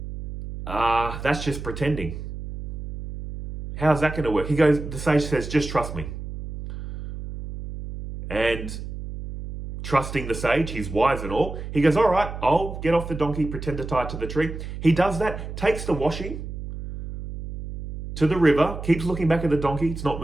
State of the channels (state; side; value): noise; right; hum, 9 dB below the sound